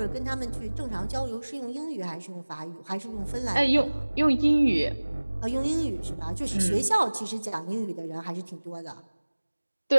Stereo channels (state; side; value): inverted; both; correlation -1.00